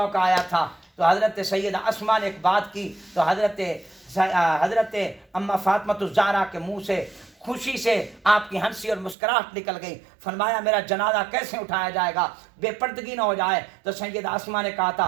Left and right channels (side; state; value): left; drops out; at 9.2 s